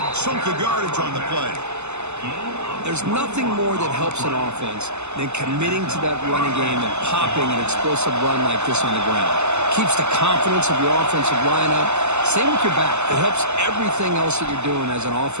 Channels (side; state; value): left; late; 0.82 ms